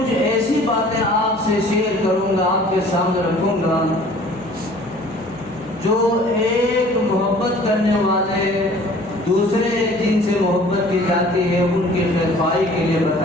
ایسی باتیں آپ سے شیئر کروں گا، آپ کے سامنے رکھوں گا جو ایک محبت کرنے والے دوسرے جن سے محبت کی جاتی ہے ان کی خیرخواہی کے لیے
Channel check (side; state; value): left; noise; hum, 21 dB below the sound